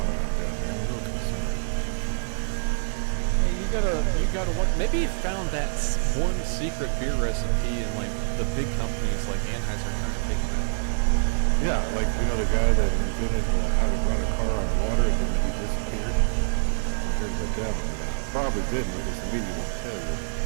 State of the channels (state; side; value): silent; left; 61 dB below the other